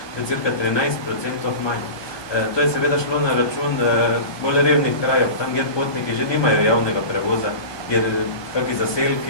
To je cirka 13% manj. To je seveda šlo na račun bolj revnih krajev, tam, kjer potniki že nimajo javnega prevoza, kjer kakšni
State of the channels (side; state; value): right; late; 1.2 ms